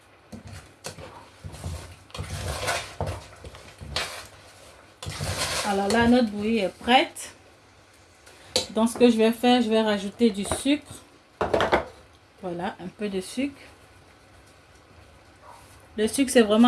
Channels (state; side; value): identical; both; correlation 1.00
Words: Alors là, notre bouillie est prête. Donc, ce que je vais faire, je vais rajouter du sucre. Voilà, un peu de sucre. Le sucre, c'est